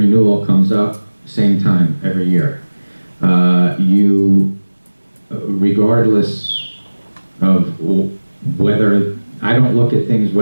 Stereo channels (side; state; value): both; inverted; correlation -1.00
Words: comes up, same time, every year. Regardless of whether, I don't look at things